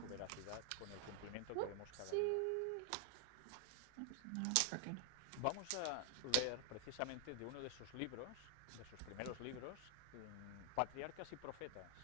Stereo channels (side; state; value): both; different; correlation 0.00